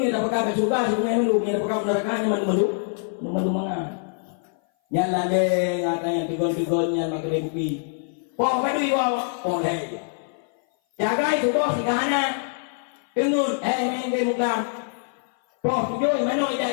ni tak pakai surga si bunga mandu, ni pakai nerakanya mandu manga. Nyan lagi ngatanya tigol nyan makan kopi. Poh padui bawa, poh leh. Jaga itu poh si kahana. Pengun main game muklam. Poh tujuh mana ida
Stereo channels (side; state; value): right; silent; 57 dB below the other